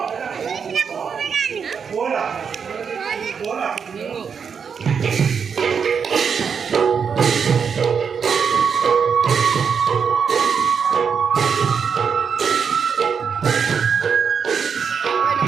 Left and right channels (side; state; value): left; quieter; 6.5 dB